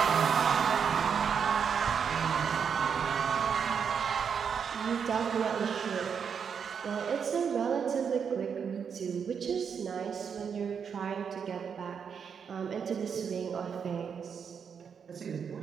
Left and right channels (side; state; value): left; quieter; 6.9 dB